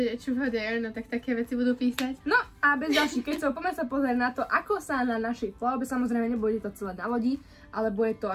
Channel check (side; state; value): both; identical; correlation 1.00